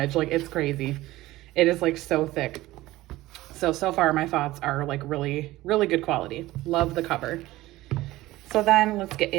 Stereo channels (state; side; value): quieter; left; 17.4 dB